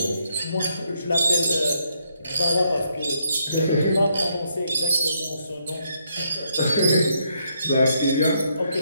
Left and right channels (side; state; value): both; inverted; correlation -0.75